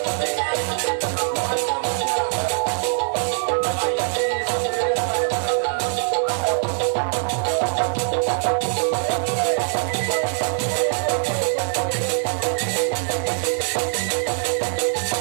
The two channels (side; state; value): left; silent; digital silence